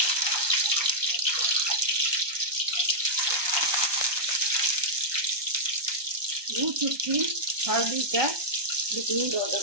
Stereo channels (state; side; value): late; left; 1.2 ms